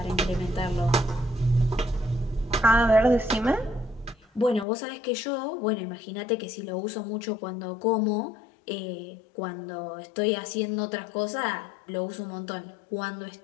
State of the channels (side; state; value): right; drops out; at 4.7 s